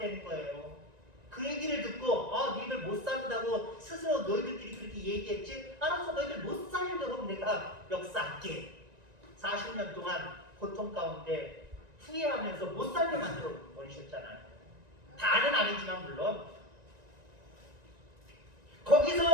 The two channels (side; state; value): left; late; 1.9 ms